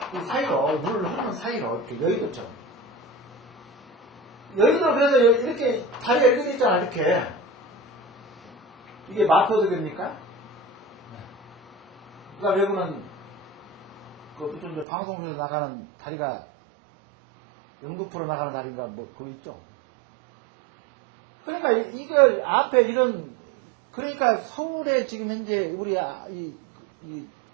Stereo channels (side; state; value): left; drops out; at 14.9 s